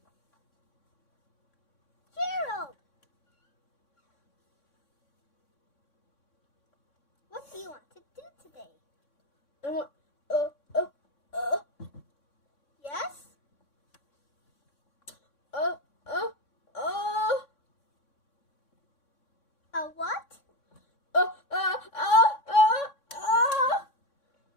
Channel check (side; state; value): right; late; 3.6 ms